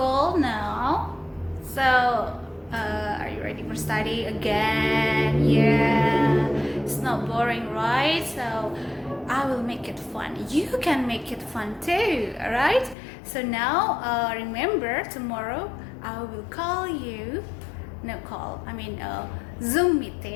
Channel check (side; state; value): right; drops out; at 13.0 s